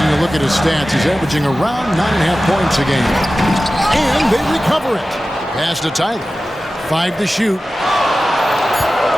a look at his stats, he's averaging around 9.5 points a game. And they recover it. Pass to Tyler. 5 to shoot.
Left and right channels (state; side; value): normal; both; correlation 0.95